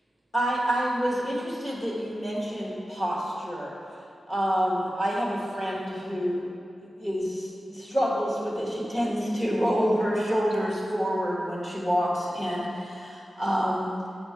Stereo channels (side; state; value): both; normal; correlation 0.94